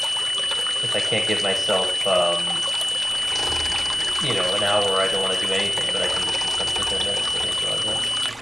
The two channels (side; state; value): both; normal; correlation 0.95